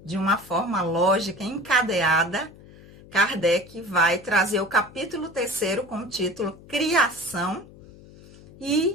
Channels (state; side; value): noise; left; hum, 21 dB below the sound